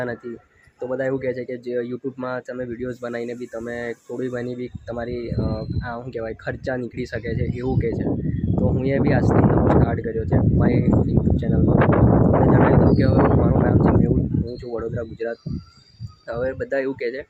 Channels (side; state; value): both; identical; correlation 1.00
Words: નથી. તો બધા એવું કહે છે કે જે યુટ્યુબમાં તમે વિડીયોઝ બનાવીને બી તમે થોડી ઘણી બી તમારી શું કહેવાય ખર્ચા નીકળી શકે છે, એવું કહે છે. તો હું એ બી આજથી નવો સ્ટાર્ટ કર્યો છે મારી યુટ્યુબ ચેનલમાં. તમને જણાવી દઉં કે હવે મારું નામ છે મેહુલ, હું છું વડોદરા, ગુજરાત. હવે બધા એવું કહે છે